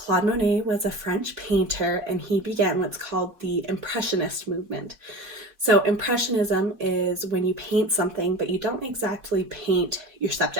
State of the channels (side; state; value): left; late; 4.5 ms